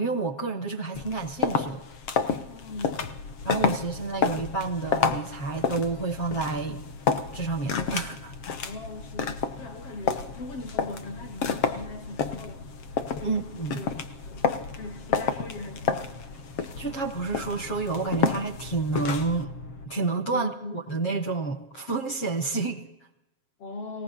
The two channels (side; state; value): right; late; 7.5 ms